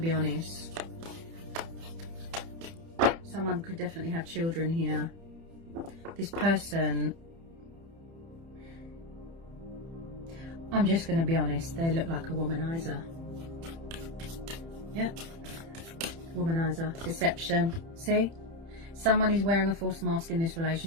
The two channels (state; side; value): late; left; 30 ms